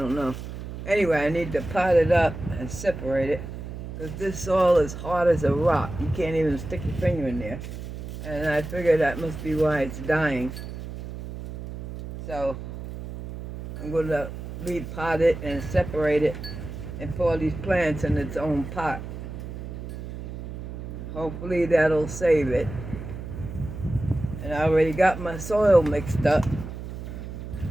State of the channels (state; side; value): noise; right; hum, 9 dB below the sound